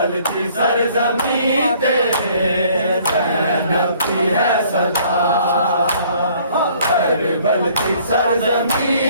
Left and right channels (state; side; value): inverted; both; correlation -0.59